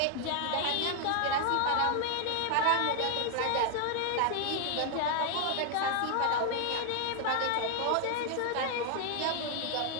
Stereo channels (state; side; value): different; both; correlation 0.00